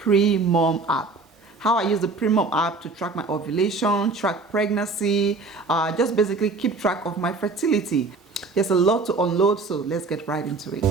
app. How I use the PREMOM app to track my ovulation, track pregnancy, just basically keep track of my fertility. There's a lot to unload, so let's get right into it.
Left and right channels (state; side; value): quieter; left; 3.8 dB